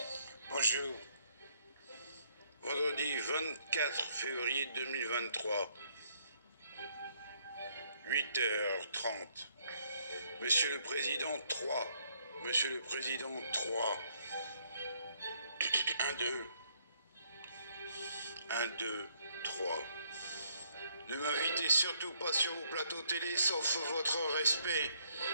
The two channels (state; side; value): inverted; both; correlation -0.68